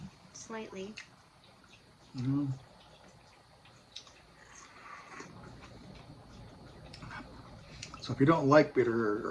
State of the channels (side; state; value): both; identical; correlation 1.00